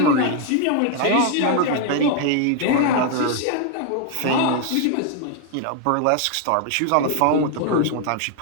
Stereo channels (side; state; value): both; different; correlation 0.01